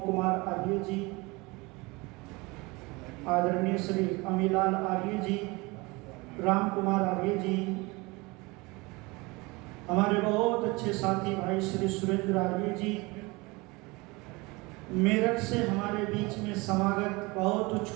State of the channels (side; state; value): left; quieter; 24.6 dB